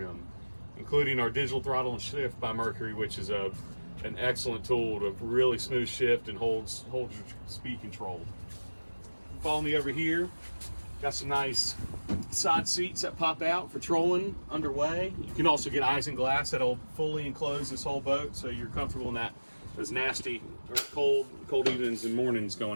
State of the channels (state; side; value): inverted; both; correlation -1.00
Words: including our digital throttle and shift by Mercury, which is an excellent tool to really smooth shift and holds your speed control. Follow me over here. Got some nice side seats that pop out for trolling underway. You can also get eyes and glass that'll fully enclose this whole boat, so you're comfortable in those nasty or cold evenings and mornings